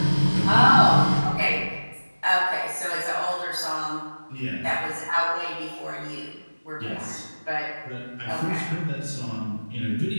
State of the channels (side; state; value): both; inverted; correlation -1.00